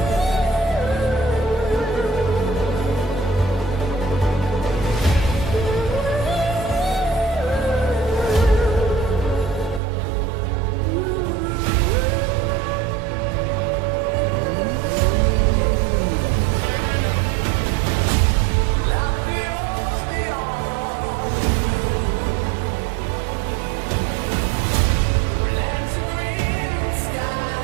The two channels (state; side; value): drops out; left; at 9.8 s